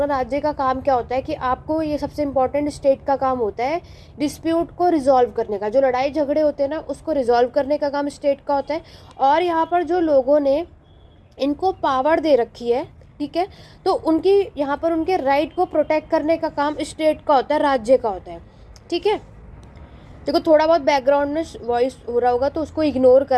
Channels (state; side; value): identical; both; correlation 1.00